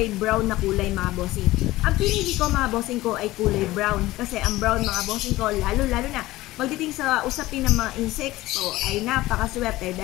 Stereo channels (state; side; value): quieter; right; 17.7 dB